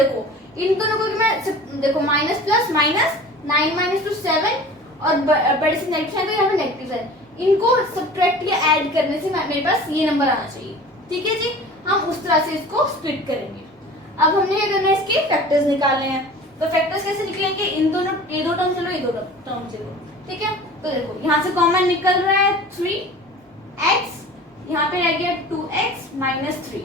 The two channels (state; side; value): normal; both; correlation 0.41